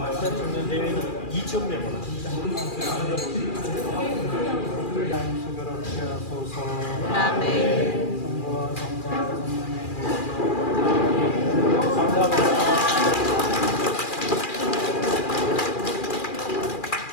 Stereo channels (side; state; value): right; late; 2.4 ms